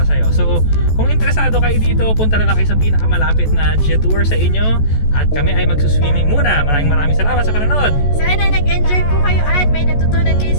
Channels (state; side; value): late; right; 14 ms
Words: sa'yo. So, kung interesado kayo dito, punta na lang kayo sa pinakamalapit na Jetour sa inyo, at kami ay magsuswimming muna. Maraming salamat sa panonood. Sana nag-enjoy po kayo at may natutunan kayo